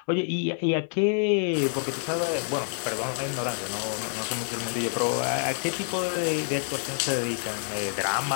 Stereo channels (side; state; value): right; silent; 60 dB below the other